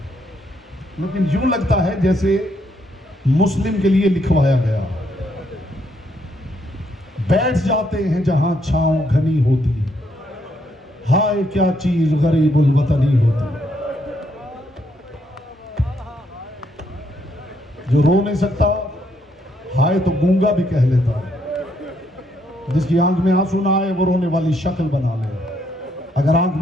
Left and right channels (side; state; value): both; normal; correlation 0.74